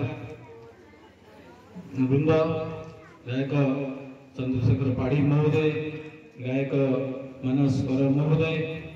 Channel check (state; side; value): identical; both; correlation 1.00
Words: ବୃନ୍ଦ, ଗାୟକ ଚନ୍ଦ୍ରଶେଖର ପାଢ଼ୀ ମହୋଦୟ, ଗାୟକ ମାନସ କର ମହୋଦୟ